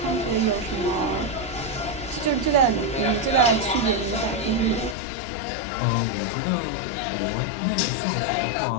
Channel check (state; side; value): drops out; right; at 5.0 s